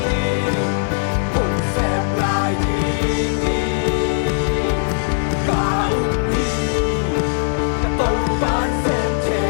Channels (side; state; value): right; silent; digital silence